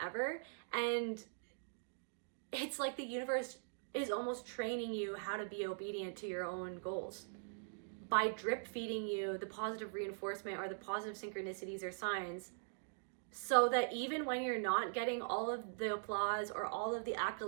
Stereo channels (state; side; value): silent; left; digital silence